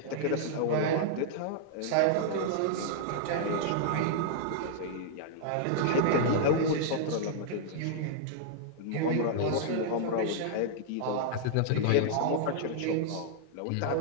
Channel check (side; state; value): both; different; correlation -0.01